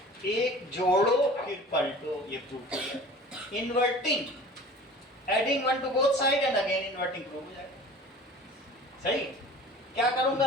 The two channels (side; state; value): both; normal; correlation 0.42